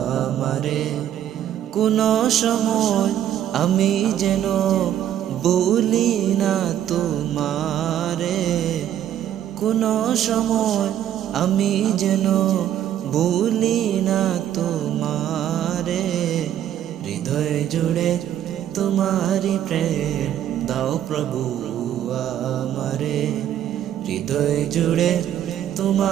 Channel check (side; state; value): left; quieter; 11.0 dB